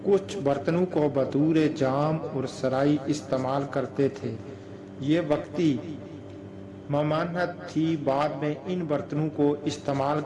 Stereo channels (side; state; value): both; identical; correlation 1.00